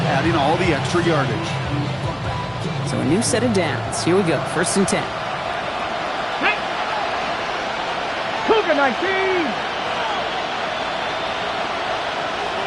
adding all the extra yardage. So a new set of downs. Here we go. 1st and 10. Hey! Cougar 19!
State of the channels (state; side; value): identical; both; correlation 1.00